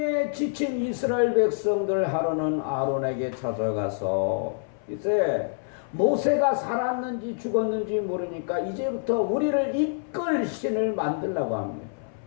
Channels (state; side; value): silent; right; 61 dB below the other